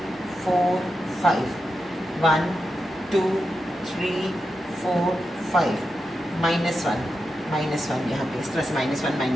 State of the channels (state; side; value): normal; both; correlation 0.88